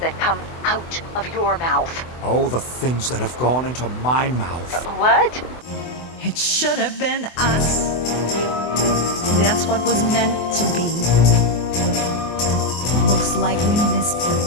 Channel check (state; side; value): late; right; 24 ms